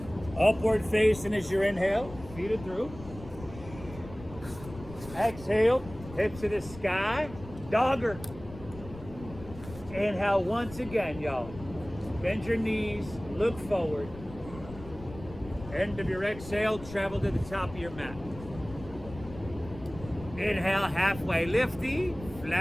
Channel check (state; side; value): noise; left; rumble, 15 dB below the sound